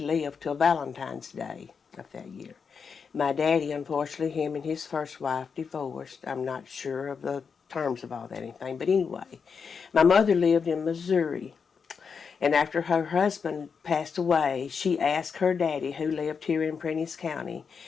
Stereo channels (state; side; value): quieter; right; 5.9 dB